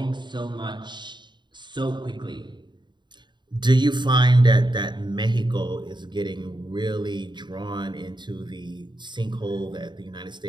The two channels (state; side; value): late; left; 0.22 ms